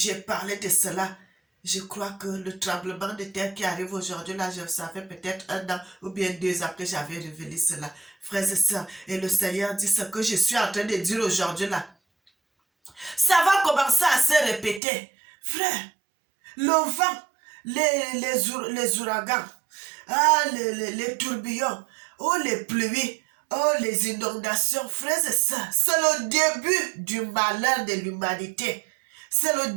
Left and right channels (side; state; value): left; drops out; at 14.8 s